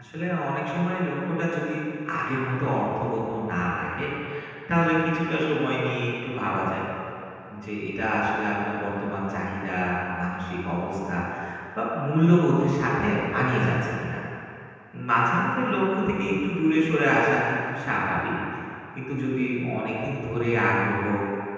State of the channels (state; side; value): identical; both; correlation 1.00